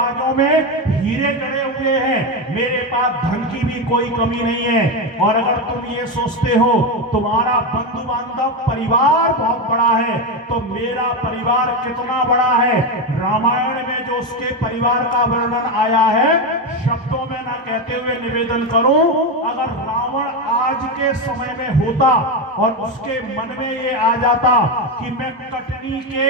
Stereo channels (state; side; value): normal; both; correlation 0.12